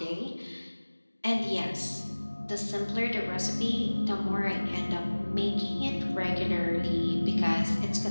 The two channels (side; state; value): both; inverted; correlation -1.00